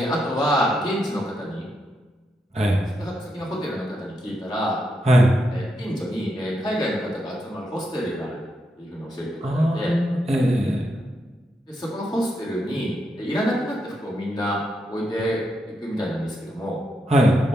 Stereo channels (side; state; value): both; normal; correlation 0.82